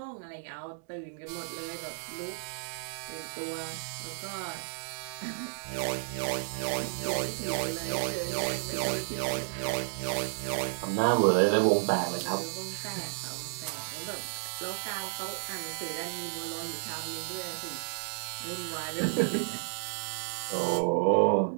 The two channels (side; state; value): left; silent; digital silence